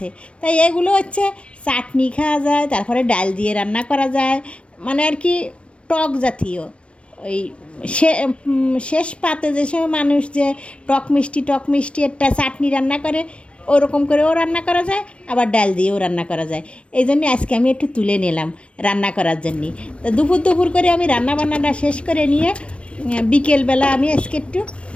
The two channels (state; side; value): late; right; 0.060 ms